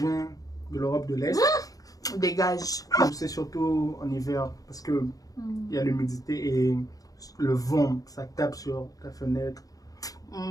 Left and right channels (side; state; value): right; late; 0.17 ms